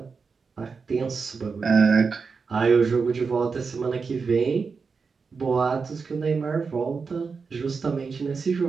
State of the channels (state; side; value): quieter; left; 5.1 dB